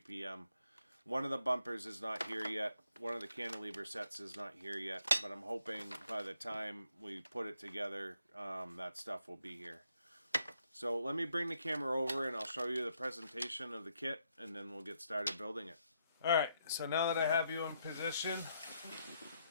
One of the bumpers is not here yet. One of the cantilever sets is not here yet, but I'm hoping by the time we put it together, that stuff will be here. So let me bring the camera over and I'll show you the presentation of the kit, and then we'll get started building it. Alright, so now that I have you in position,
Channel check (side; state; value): both; inverted; correlation -0.76